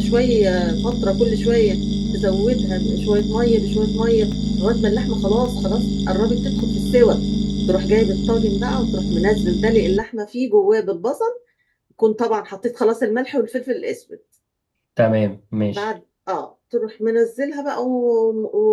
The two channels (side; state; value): both; identical; correlation 1.00